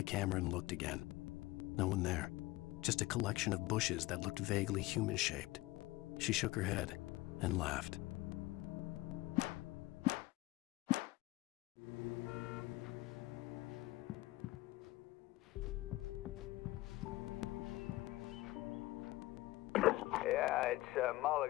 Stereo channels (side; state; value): right; quieter; 19.0 dB